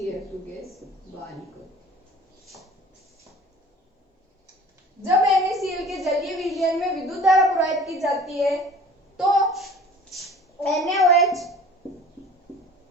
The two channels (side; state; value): both; normal; correlation 0.46